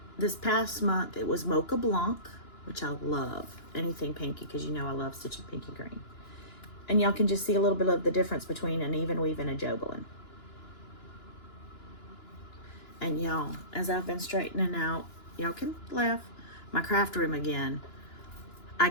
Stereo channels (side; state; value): right; late; 2.9 ms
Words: this past month, it was Mocha Blanc, which I love. Anything pinky, because you know I love stitching pinky green. And y'all can just see a little bit of the difference between an even weave and a Jobelin. And y'all, as I've been straightening out, y'all can laugh, my craft room again, I